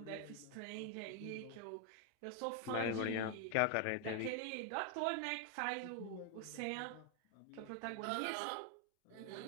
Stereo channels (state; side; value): different; both; correlation 0.01